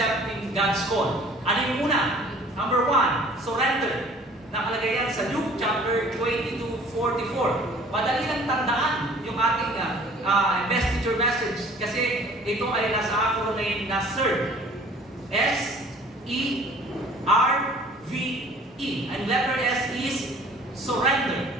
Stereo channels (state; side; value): normal; both; correlation 0.51